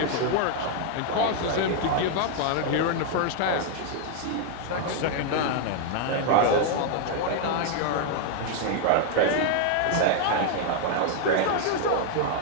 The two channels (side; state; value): both; different; correlation 0.00